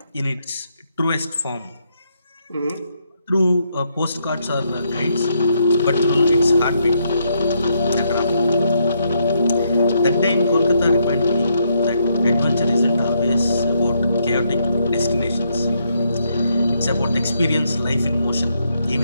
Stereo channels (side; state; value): both; inverted; correlation -0.76